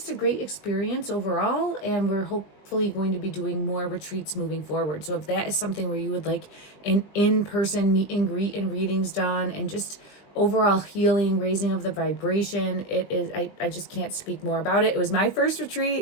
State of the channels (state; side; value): late; right; 20 ms